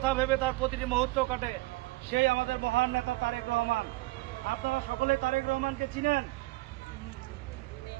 ভেবে তার প্রতিটি মুহূর্ত কাটে, সেই আমাদের মহান নেতা তারেক রহমান। আপনারা সকলে তারেক রহমানকে চিনেন,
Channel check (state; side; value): quieter; left; 21.1 dB